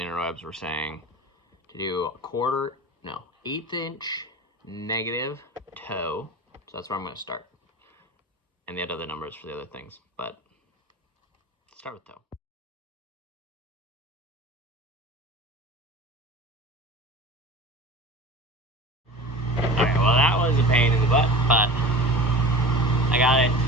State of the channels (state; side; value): normal; both; correlation 0.36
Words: interwebs were saying to do a 1/8 inch negative toe. So that's where I'm going to start, and they had other numbers for the other things, but start with toe. Alright, well that was a pain in the butt, but I got it